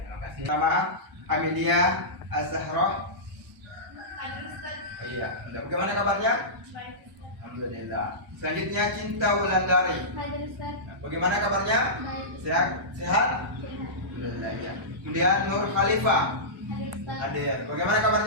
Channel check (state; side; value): normal; both; correlation -0.17